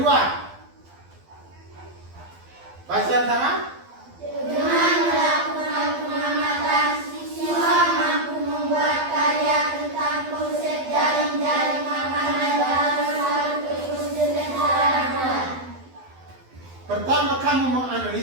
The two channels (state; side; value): late; left; 12 ms